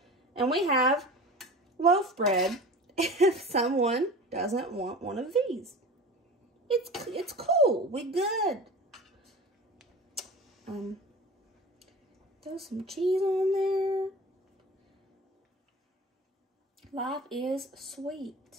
And we have loaf bread if someone doesn't want one of these. It's cool. We good. Throw some cheese on there. Life is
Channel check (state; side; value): normal; both; correlation 0.36